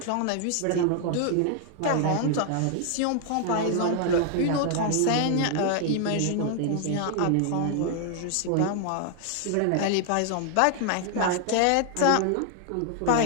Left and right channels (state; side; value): different; both; correlation 0.00